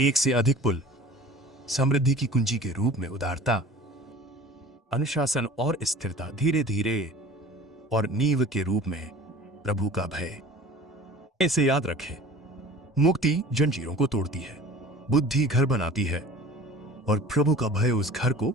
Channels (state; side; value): normal; both; correlation 0.43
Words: से अधिक पुल, समृद्धि की कुंजी के रूप में उदारता, अनुशासन और स्थिरता, धीरे धीरे, और नींव के रूप में प्रभु का भय। इसे याद रखें, मुक्ति जंजीरों को तोड़ती है, बुद्धि घर बनाती है और प्रभु का भय उस घर को